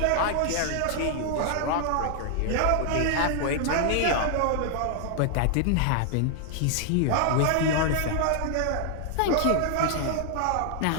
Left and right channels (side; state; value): both; different; correlation 0.00